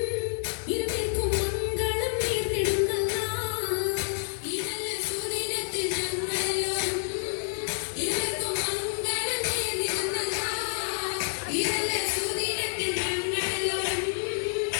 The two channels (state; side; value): silent; right; 59 dB below the other